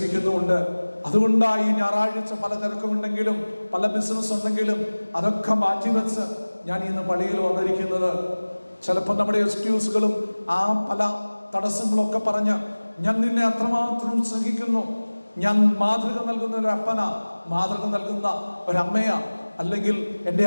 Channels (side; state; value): both; inverted; correlation -1.00